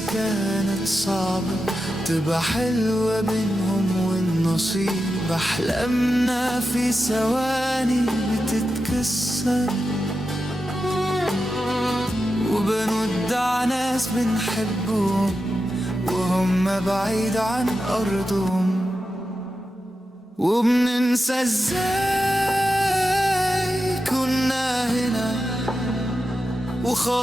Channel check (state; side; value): normal; both; correlation 0.90